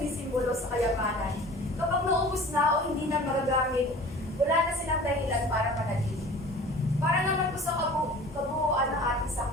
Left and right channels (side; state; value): both; normal; correlation 0.43